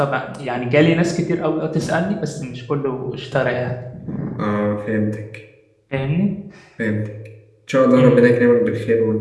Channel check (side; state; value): both; identical; correlation 1.00